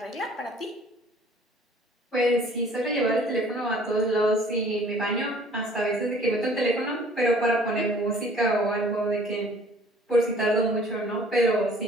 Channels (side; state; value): both; normal; correlation 0.53